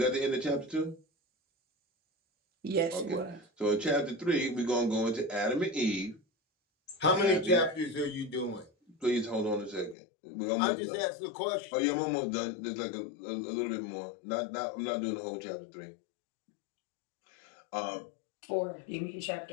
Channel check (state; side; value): drops out; right; at 10.0 s